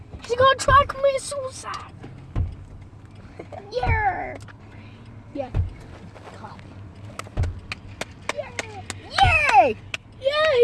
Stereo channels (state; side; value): identical; both; correlation 1.00